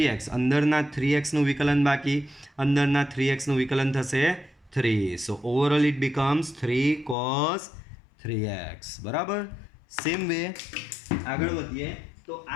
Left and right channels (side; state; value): right; drops out; at 7.2 s